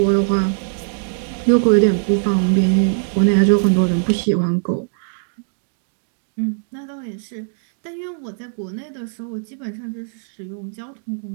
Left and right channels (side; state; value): left; silent; 62 dB below the other